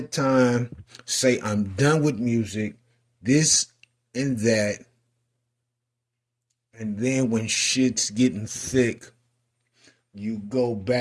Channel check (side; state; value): both; identical; correlation 1.00